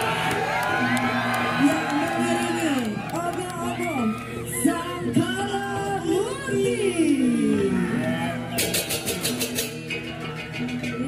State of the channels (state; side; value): identical; both; correlation 1.00